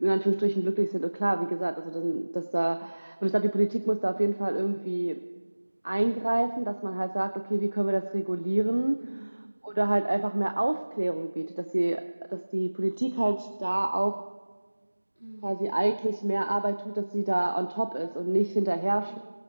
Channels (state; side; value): inverted; both; correlation -1.00